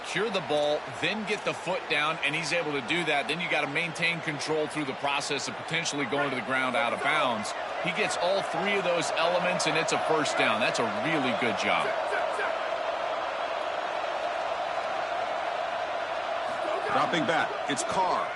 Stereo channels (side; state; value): both; identical; correlation 1.00